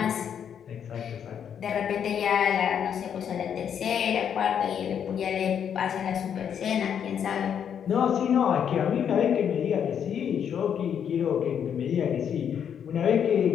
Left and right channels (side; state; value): right; quieter; 8.3 dB